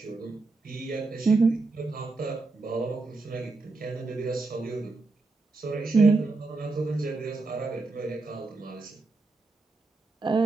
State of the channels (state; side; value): quieter; left; 3.6 dB